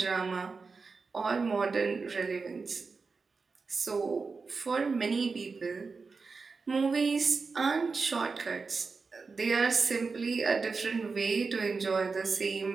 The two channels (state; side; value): quieter; left; 4.5 dB